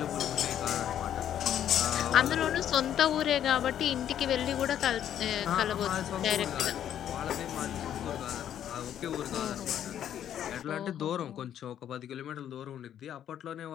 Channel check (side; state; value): right; quieter; 10.3 dB